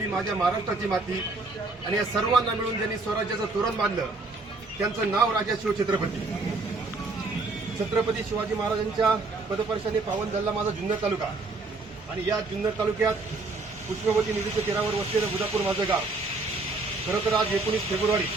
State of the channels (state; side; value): quieter; left; 3.5 dB